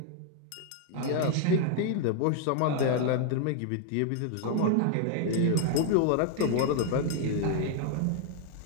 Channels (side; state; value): both; different; correlation 0.00